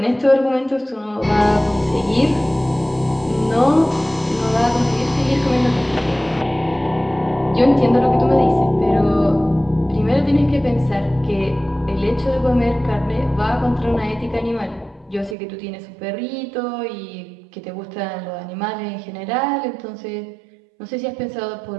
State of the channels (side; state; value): left; drops out; at 15.4 s